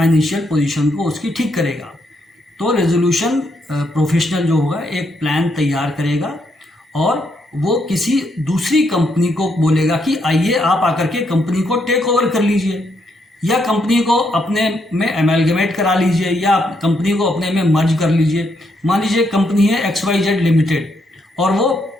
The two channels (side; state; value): both; normal; correlation 0.77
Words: पोजीशन को उसकी ठीक करेगा। तो रेजोल्यूशन प्रोफेशनल जो होगा एक प्लान तैयार करेगा और वो किसी दूसरी कंपनी को बोलेगा कि आइए आप आकर के कंपनी को टेक ओवर कर लीजिए, या कंपनी को अपने में एमलगमेट करा लीजिए, या कंपनी को अपने में मर्ज कर लीजिए। मान लीजिए कंपनी है XYZ लिमिटेड और वो